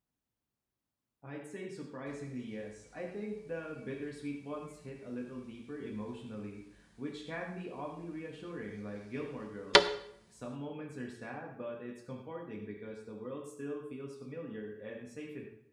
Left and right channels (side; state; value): both; identical; correlation 1.00